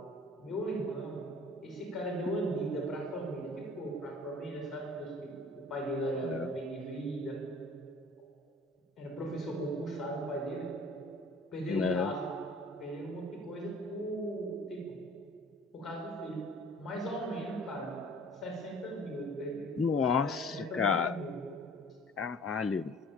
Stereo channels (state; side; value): normal; both; correlation 0.49